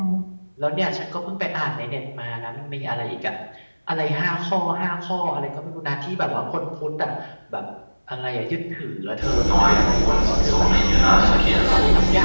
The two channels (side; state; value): both; inverted; correlation -1.00